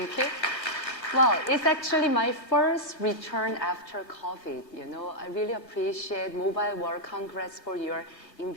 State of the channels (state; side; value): late; right; 3.2 ms